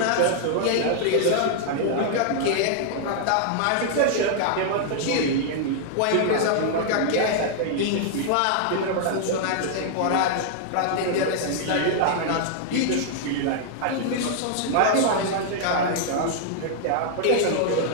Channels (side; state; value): both; different; correlation -0.01